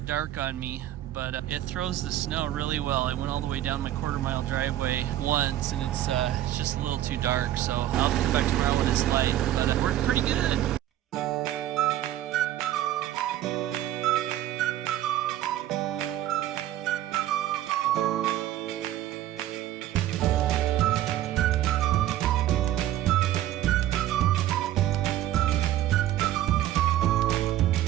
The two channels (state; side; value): quieter; left; 13.2 dB